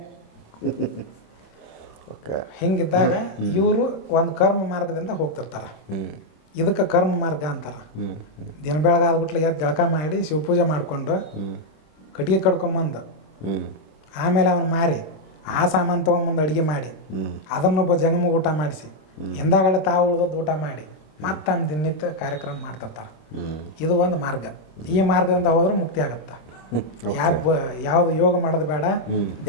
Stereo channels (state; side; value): late; right; 26 ms